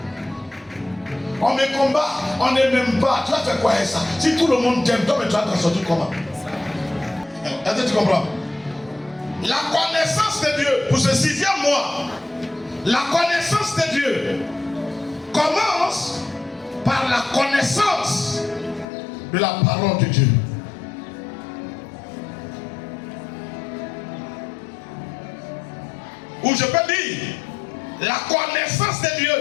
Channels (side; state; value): right; drops out; at 18.9 s